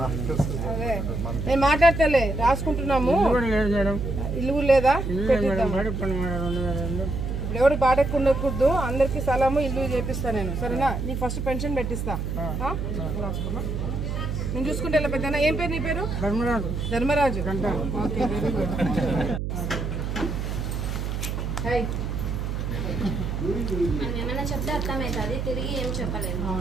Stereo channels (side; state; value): right; noise; hum, 3 dB below the sound